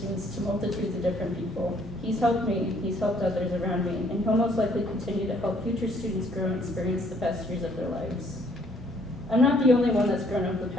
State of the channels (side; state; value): both; normal; correlation 0.63